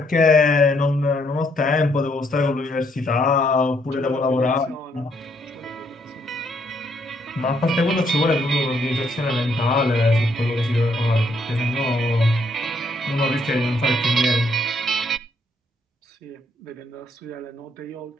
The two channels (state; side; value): normal; both; correlation 0.71